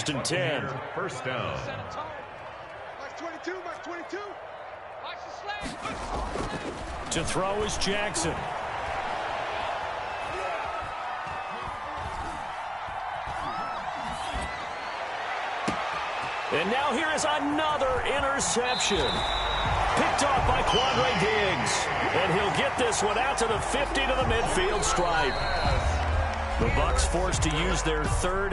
and 10. 1st down. Mark 22, Mark 22. Watch the slash. To throw is Jackson. And now here is another interception. Picked off by Quandre Diggs. And he'll get this one out to the 50 to the midfield stripe. The Bucs forced to use their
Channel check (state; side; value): identical; both; correlation 1.00